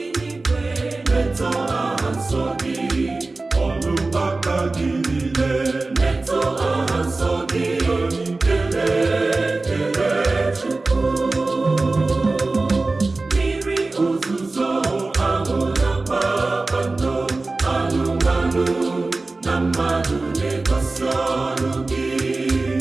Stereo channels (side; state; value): left; quieter; 3.4 dB